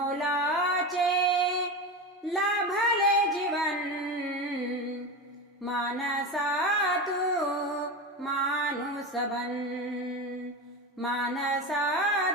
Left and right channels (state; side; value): normal; both; correlation 0.22